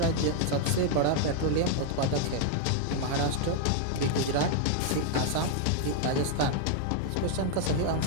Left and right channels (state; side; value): different; both; correlation 0.00